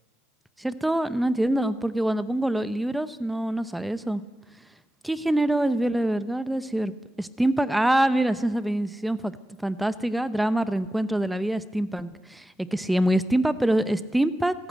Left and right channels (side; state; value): both; normal; correlation 0.93